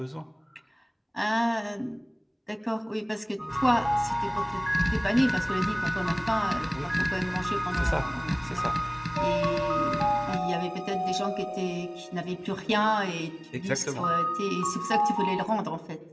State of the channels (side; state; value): both; identical; correlation 1.00